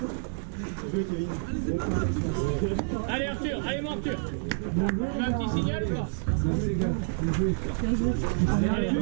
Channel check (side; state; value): left; silent; 59 dB below the other